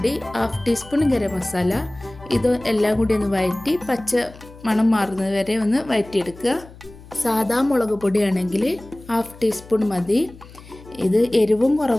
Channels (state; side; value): noise; left; hum, 20 dB below the sound